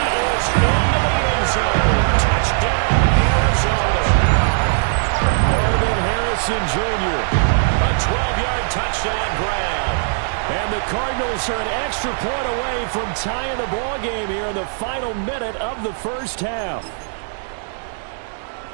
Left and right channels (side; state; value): left; silent; digital silence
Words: is into the end zone. Touchdown, Arizona. Marvin Harrison Jr. A 12-yard touchdown grab. And the Cardinals are an extra point away from tying the ball game here in the final minute of the first half.